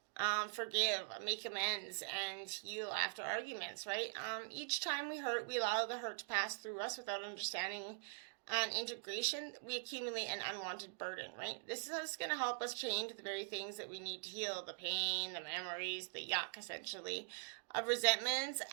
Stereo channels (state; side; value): silent; left; digital silence